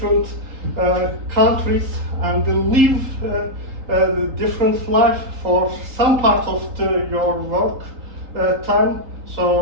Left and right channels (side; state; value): left; late; 3.8 ms